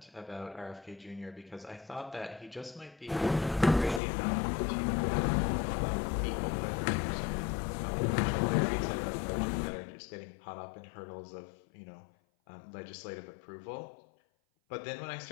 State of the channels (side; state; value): right; drops out; at 4.0 s